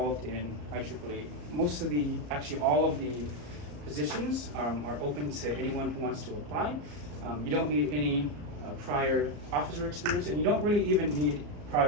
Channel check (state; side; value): late; left; 34 ms